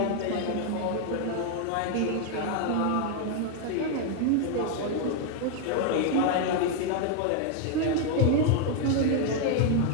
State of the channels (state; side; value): different; both; correlation 0.00